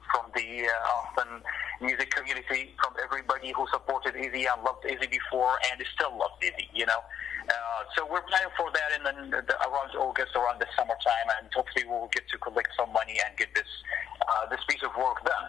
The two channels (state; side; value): quieter; right; 9.0 dB